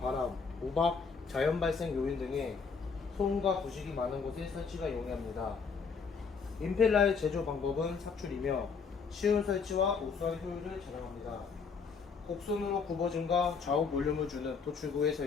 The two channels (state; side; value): quieter; right; 5.4 dB